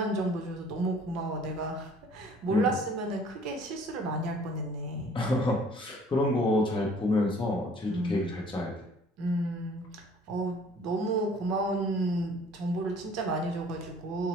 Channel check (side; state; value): both; normal; correlation 0.54